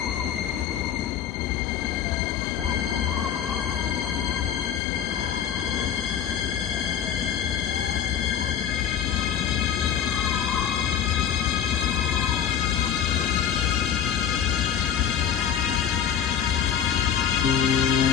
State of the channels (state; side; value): quieter; right; 8.7 dB